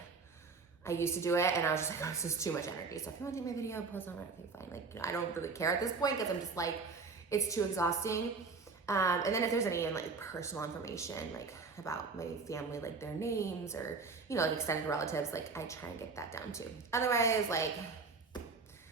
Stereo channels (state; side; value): quieter; left; 4.5 dB